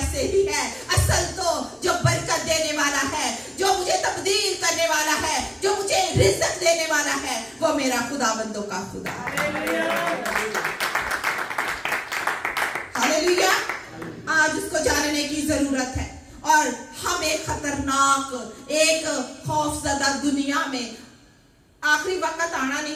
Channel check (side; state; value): both; identical; correlation 1.00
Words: ही है। असल तो जो बरकत देने वाला है, जो मुझे तब्दील करने वाला है, जो मुझे रिज़्क़ देने वाला है, वो मेरा खुदाबंदों का खुदा है। हालेलुया। आज उसको जानने की जरूरत है। और हम एक खतरनाक, एक खौफजदा दुनिया में, आखिरी वक्त आना नहीं